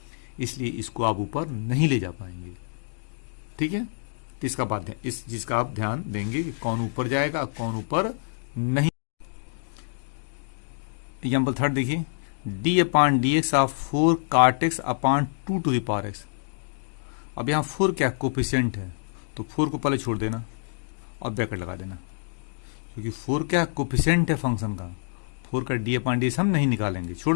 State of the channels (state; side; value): silent; right; digital silence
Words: इसलिए इसको आप ऊपर नहीं ले जा पाएंगे। ठीक है, तो इसका बात है, इस चीज का आप ध्यान देंगे कि कौन ऊपर जाएगा, कौन ऊपर नहीं। एग्जाम्पल थर्ड देखिए, D upon D X of 4 cot x upon 2 to the power X. अब यहां 4 क्या कोफिशिएंट है, तो 4 को पहले छोड़ देना और ब्रैकेट लगा देना, क्योंकि 4 क्या कोफिशिएंट है फंक्शन का। 4 का डी अपॉन डी एक्स हम नहीं निकालेंगे,